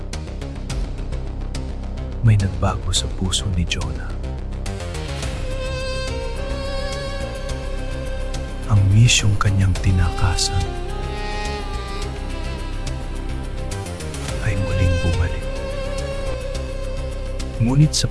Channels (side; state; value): both; identical; correlation 1.00